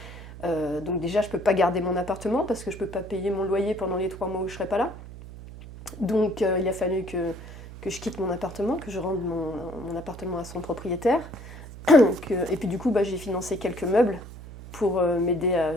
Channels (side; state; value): right; noise; hum, 14 dB below the sound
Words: Donc déjà, je peux pas garder mon appartement, parce que je peux pas payer mon loyer pendant les 3 mois où je serai pas là. Donc il a fallu que je quitte mon appartement, que je rende mon appartement à son propriétaire. Et puis du coup, j'ai financé quelques meubles pour m'aider